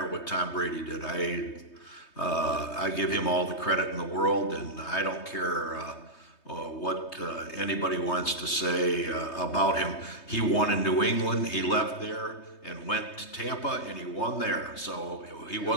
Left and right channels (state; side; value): late; right; 3.2 ms